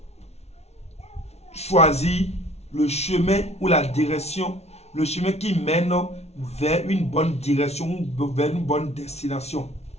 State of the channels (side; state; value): right; late; 0.31 ms